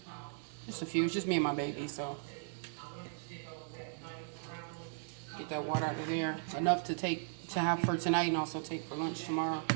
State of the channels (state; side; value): silent; left; digital silence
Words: Just a few. It's just me and my baby, so get that water out of there. Enough to have for tonight and also take for lunch tomorrow.